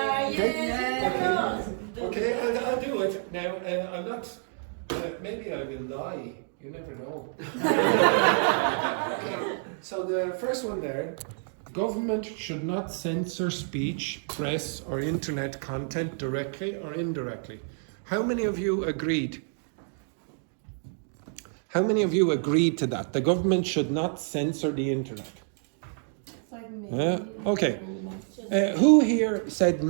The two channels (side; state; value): left; silent; 59 dB below the other